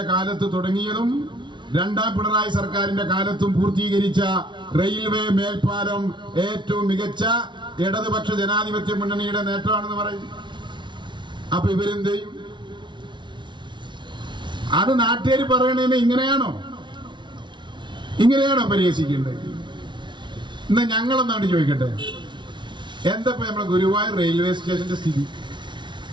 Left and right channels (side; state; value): left; late; 0.23 ms